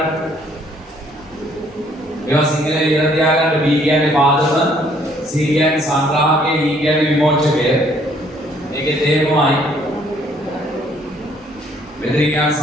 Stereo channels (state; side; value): normal; both; correlation 0.64